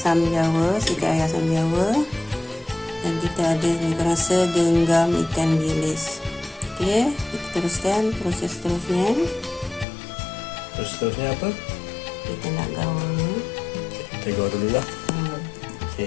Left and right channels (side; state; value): right; drops out; at 9.9 s